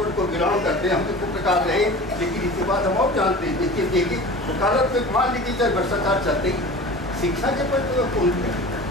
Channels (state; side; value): normal; both; correlation 0.37